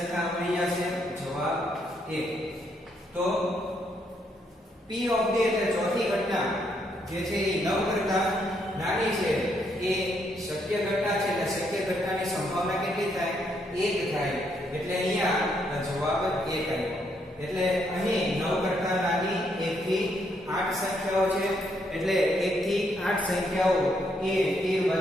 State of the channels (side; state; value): both; normal; correlation 0.74